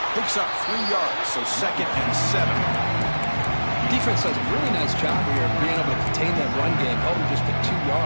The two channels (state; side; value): inverted; both; correlation -1.00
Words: Picks up 3 yards, so 2nd and 7. Defense does a really nice job here of being able to contain that run game, holding just to 2